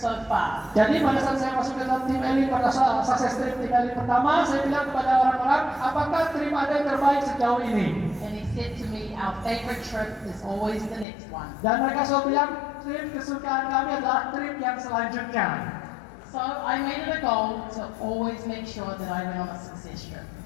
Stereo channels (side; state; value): right; drops out; at 11.1 s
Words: far?" Jadi pada saat saya masuk ke dalam tim elit pada saat sukses trip tim elit pertama, saya bilang kepada orang-orang, apakah trip Anda yang terbaik sejauh ini? And he said to me, "Our favorite trip is always the next one." Dan mereka selalu bilang, trip kesukaan kami adalah trip yang selanjutnya. So I made it a goal to always make sure that I went on a success trip.